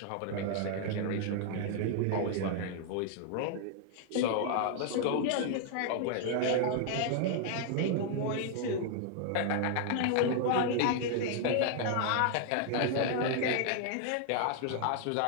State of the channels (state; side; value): different; both; correlation 0.00